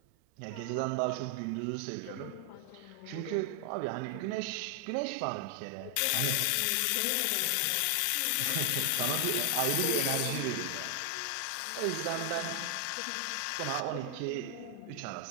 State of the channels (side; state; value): both; different; correlation 0.00